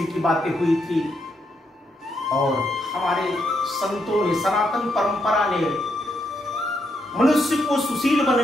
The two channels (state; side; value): normal; both; correlation 0.79